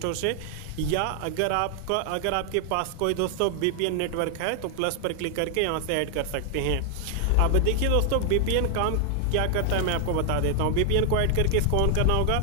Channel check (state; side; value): different; both; correlation 0.00